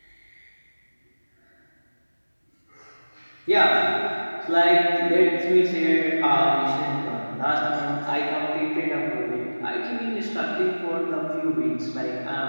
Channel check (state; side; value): inverted; both; correlation -1.00